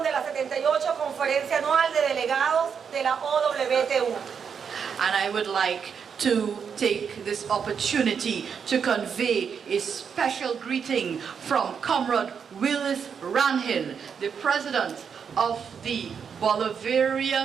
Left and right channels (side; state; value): left; quieter; 6.8 dB